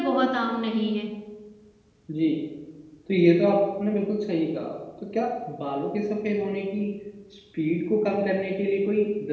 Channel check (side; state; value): both; identical; correlation 1.00